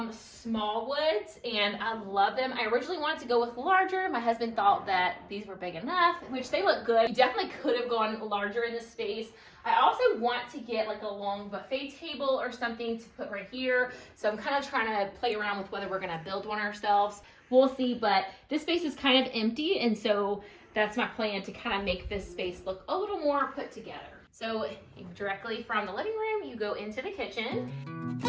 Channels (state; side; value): identical; both; correlation 1.00